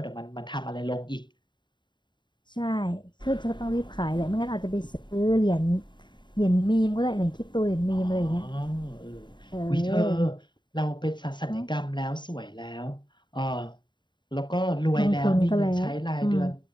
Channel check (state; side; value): late; right; 0.22 ms